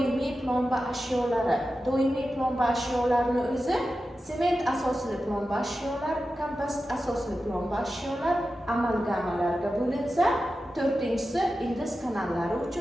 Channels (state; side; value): normal; both; correlation 0.92